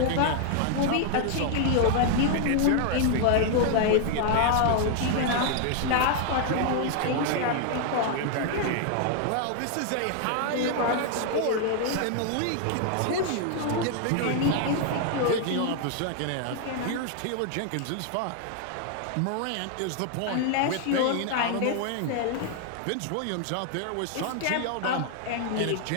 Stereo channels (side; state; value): both; different; correlation 0.00